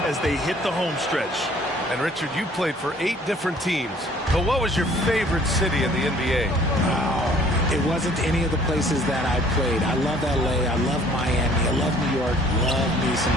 as they hit the home stretch. And Richard, you played for 8 different teams. But what was your favorite city in the NBA? It wasn't any of the places that I played. I love LA. I love Miami. I love New York. Love me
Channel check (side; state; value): both; normal; correlation 0.56